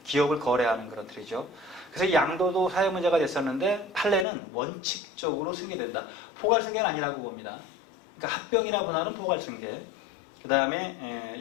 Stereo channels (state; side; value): drops out; right; at 4.2 s